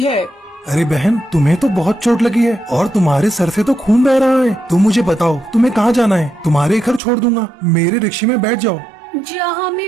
है। अरे बहन, तुम्हें तो बहुत चोट लगी है और तुम्हारे सर से तो खून बह रहा है। तुम मुझे बताओ तुम्हें कहाँ जाना है? तुम्हारे घर छोड़ दूंगा, मेरे रिक्शे में बैठ जाओ। जहाँ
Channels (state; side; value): drops out; left; at 7.0 s